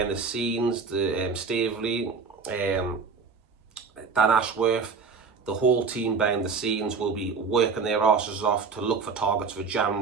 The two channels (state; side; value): quieter; left; 5.1 dB